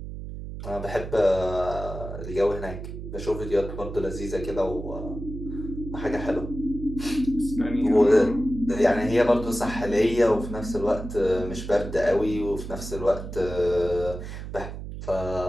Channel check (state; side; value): noise; right; hum, 9 dB below the sound